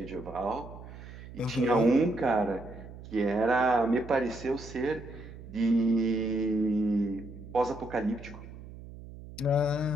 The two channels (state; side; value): noise; right; hum, 15 dB below the sound